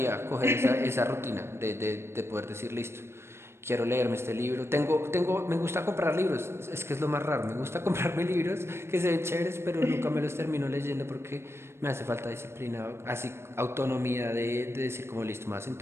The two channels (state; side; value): late; left; 0.12 ms